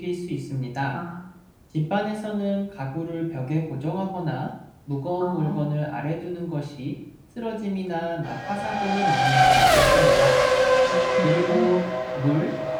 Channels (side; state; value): both; identical; correlation 1.00